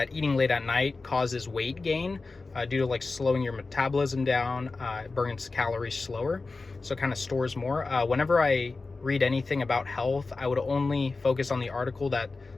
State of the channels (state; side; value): quieter; right; 3.8 dB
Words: eating late at night causes weight gain due to like slowing your metabolism down. It burns calories slower, so it kind of stores more. Whenever I read anything about health, I would only focus on the article that